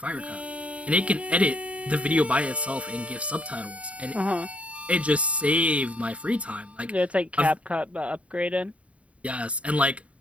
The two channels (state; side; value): late; left; 0.064 ms